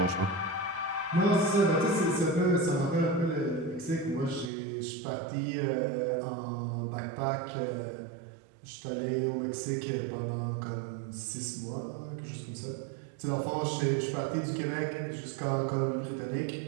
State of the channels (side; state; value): left; drops out; at 4.5 s